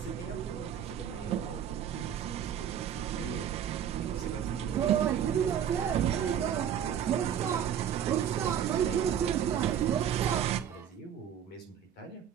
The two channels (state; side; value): quieter; left; 9.2 dB